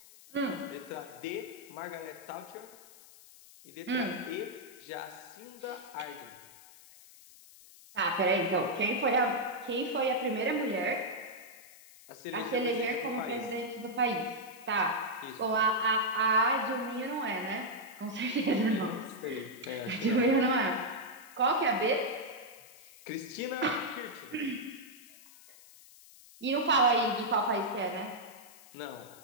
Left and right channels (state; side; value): noise; left; hiss, 21 dB below the sound